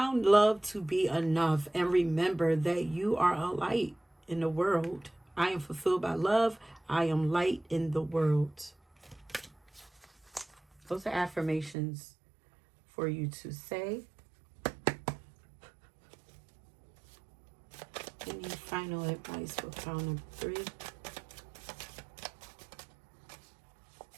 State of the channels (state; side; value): drops out; left; at 11.8 s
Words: love to be enough. And remember that you are a light in the world. I am fulfilled by love. I am light in the world. Those are affirmations for you to say. Any final advice for pile number 3?